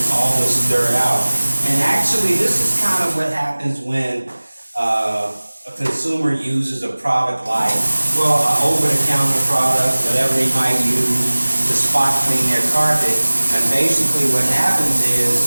all this dirt out. And actually, this is kind of what happens when a consumer uses a product like, well, an over-the-counter product, whatever they might use to spot clean their carpet. And basically what happens is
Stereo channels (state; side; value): inverted; both; correlation -1.00